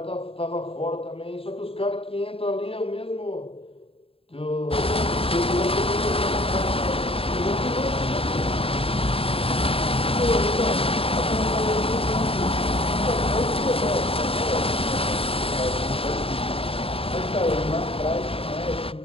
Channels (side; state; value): right; late; 0.27 ms